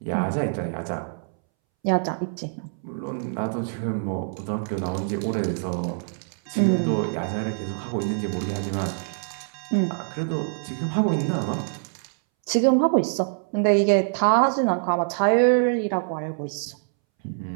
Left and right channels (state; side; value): silent; left; 62 dB below the other